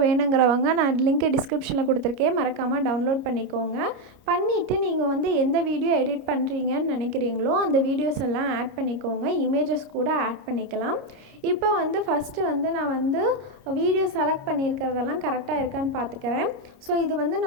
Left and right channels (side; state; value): left; late; 29 ms